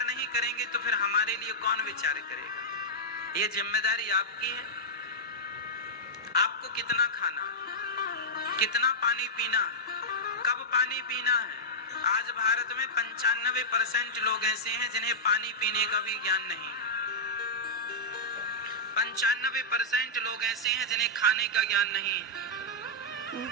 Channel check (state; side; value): normal; both; correlation -0.09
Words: नहीं करेंगे तो फिर हमारे लिए कौन विचार करेगा? ये जिम्मेदारी आपकी है। आपको कितना खाना, कितना पानी पीना, कब पानी पीना है। आज भारत में 95% लोग ऐसे हैं जिन्हें पानी पीने का भी ज्ञान नहीं है। 95% लोग ऐसे हैं जिन्हें खाने का ज्ञान नहीं है।